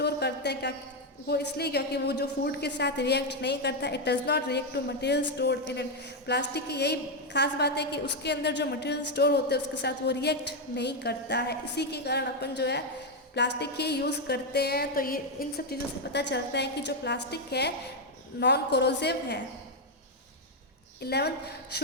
करते हैं, क्या वो इसलिए क्योंकि वो जो फूड के साथ रिएक्ट नहीं करता, it does not react to material stored in it. Plastic की यही खास बात है कि उसके अंदर जो मटेरियल स्टोर होते हैं उसके साथ वो रिएक्ट नहीं करता है। इसी के कारण अपन जो है प्लास्टिक ही यूज़ करते हैं। तो ये इन सब चीज़ों से पता चलता है कि जो प्लास्टिक है नॉन कोरोसिव है। 11th,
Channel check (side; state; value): both; normal; correlation 0.03